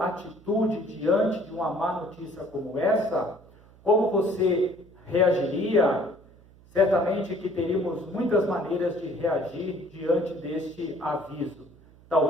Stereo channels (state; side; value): noise; right; hum, 25 dB below the sound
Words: atitude diante de uma má notícia como essa? Como você reagiria? Certamente que teríamos muitas maneiras de reagir diante deste aviso.